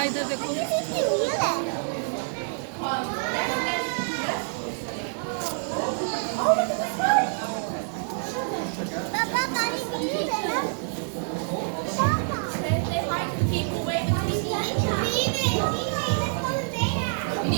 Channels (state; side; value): silent; left; 60 dB below the other